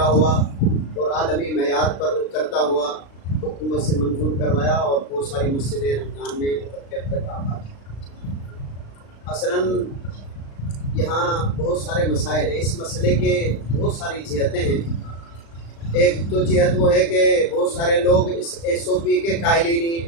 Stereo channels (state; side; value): late; right; 36 ms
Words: ہوا اور عالمی معیار پر اترتا ہوا حکومت سے منظور کروایا اور بہت ساری مسجدیں رمضان میں اتر کے اب تک آباد ہیں۔ اصلاً یہاں بہت سارے مسائل ہیں، اس مسئلے کے بہت ساری جہتیں ہیں۔ ایک تو جہت وہ ہے کہ بہت سارے لوگ اس SOP کے قائل ہی نہیں۔